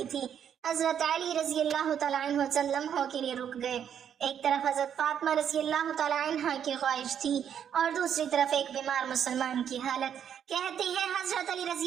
تھی۔ حضرت علی رضی اللہ تعالیٰ عنہ چند لمحوں کے لیے رک گئے۔ ایک طرف حضرت فاطمہ رضی اللہ تعالیٰ عنہ کی خواہش تھی اور دوسری طرف ایک بیمار مسلمان کی حالت۔ کہتے ہیں حضرت علی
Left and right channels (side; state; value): left; quieter; 8.8 dB